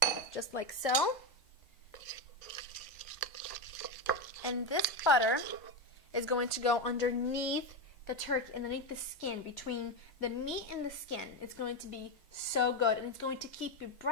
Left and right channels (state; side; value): normal; both; correlation 0.12